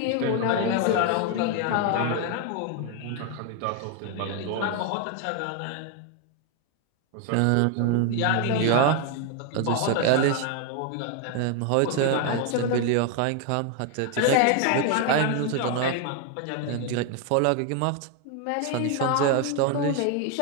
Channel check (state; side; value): different; both; correlation 0.01